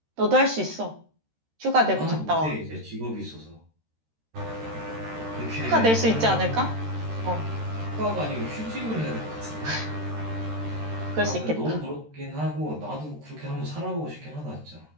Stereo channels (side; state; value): left; late; 13 ms